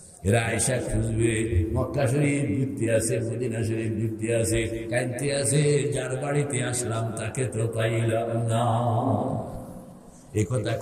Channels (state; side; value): identical; both; correlation 1.00